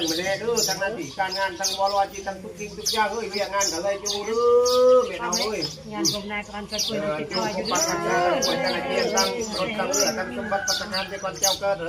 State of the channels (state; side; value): identical; both; correlation 1.00